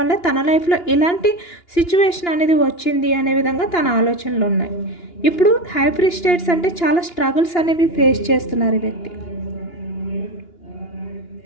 వల్ల తన లైఫ్లో ఇలాంటి సిచ్యువేషన్ అనేది వచ్చింది అనే విధంగా తన ఆలోచనలు ఉన్నాయి. ఇప్పుడు హై ప్రీస్టేట్స్ అంటే చాలా స్ట్రగుల్స్ అనేవి ఫేస్ చేస్తున్నారు ఈ వ్యక్తి.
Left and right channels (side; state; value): right; late; 2.9 ms